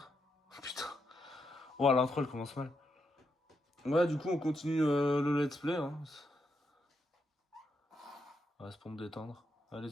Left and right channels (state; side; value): normal; both; correlation 0.81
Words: Putain. Oh, l'intro, elle commence mal. Ouais, du coup, on continue le let's play. Hein. Ouais, c'est pour me détendre. Allez,